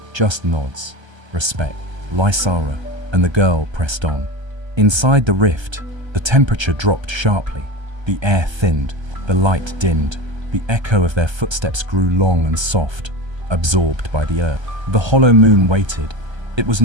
just nods, respect. Lysara and the girl pressed on. Inside the rift, the temperature dropped sharply. The air thinned, the light dimmed. The echo of their footsteps grew long and soft, absorbed by the earth. The hollow moon waited. It was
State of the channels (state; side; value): late; left; 1.3 ms